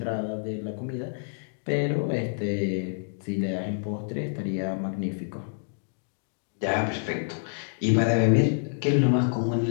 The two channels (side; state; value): right; silent; digital silence